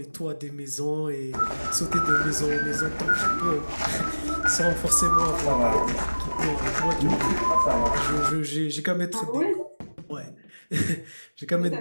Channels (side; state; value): both; inverted; correlation -1.00